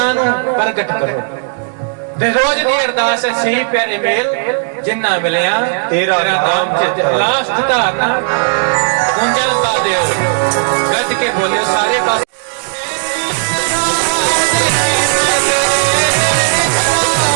ਨੂੰ ਪ੍ਰਗਟ ਕਰੋ ਤੇ ਰੋਜ਼ ਦੀ ਅਰਦਾਸ ਹੈ, ਸਹੀ ਪਿਆਰੇ ਮੇਲ ਜਿੰਨਾ ਮਿਲਿਆ ਤੇਰਾ ਨਾਮ ਚਿੱਤੇ। ਲਾਸਟ ਧਾਰਨਾ ਗੁੰਜਾਂ ਪਾ ਦਿਓ, ਗੱਜ ਕੇ ਬੋਲਿਓ ਸਾਰੇ ਪਾਸੇ।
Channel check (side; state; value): left; silent; digital silence